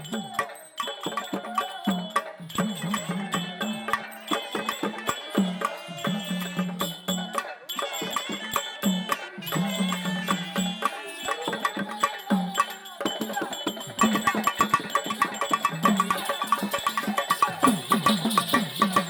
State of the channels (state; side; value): identical; both; correlation 1.00